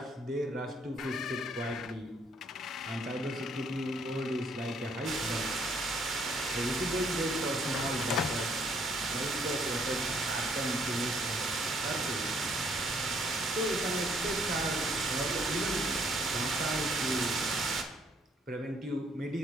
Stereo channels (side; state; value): both; normal; correlation 0.66